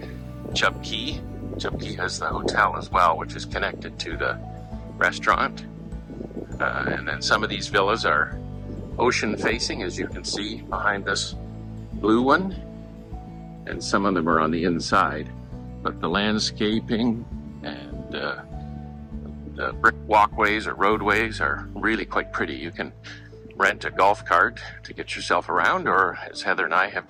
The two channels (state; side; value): identical; both; correlation 1.00